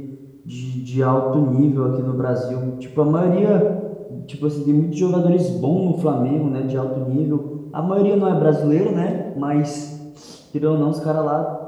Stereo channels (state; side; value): identical; both; correlation 1.00